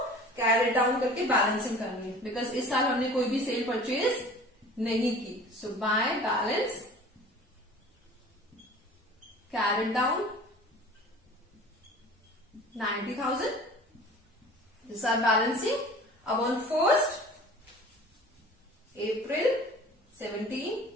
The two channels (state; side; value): normal; both; correlation 0.43